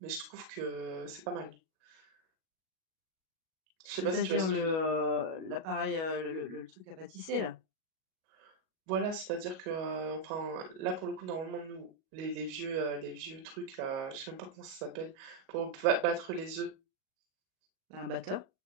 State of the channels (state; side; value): late; left; 37 ms